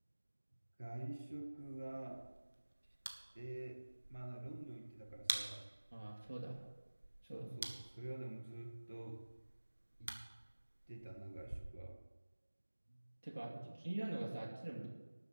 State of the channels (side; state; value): both; inverted; correlation -1.00